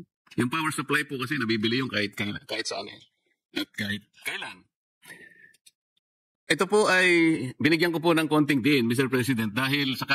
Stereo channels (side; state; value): both; identical; correlation 1.00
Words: Yung power supply po kasi nabibili yung kahit saan at kahit kailan. Ito po ay binigyan ko po ng konting din, Mr. President, dahil sa